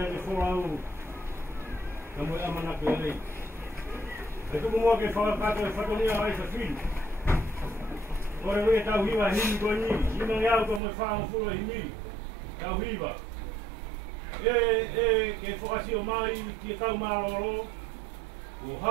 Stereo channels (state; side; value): drops out; left; at 10.8 s